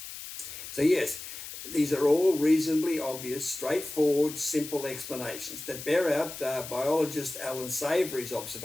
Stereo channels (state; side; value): noise; left; hiss, 11 dB below the sound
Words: So yes, these are all reasonably obvious, straightforward, simple explanations that bear out biologist Alan Savory's